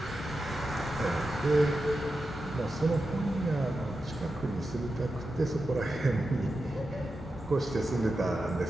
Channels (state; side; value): normal; both; correlation 0.90